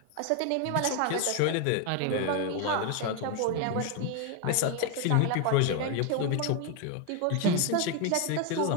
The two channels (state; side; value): different; both; correlation 0.01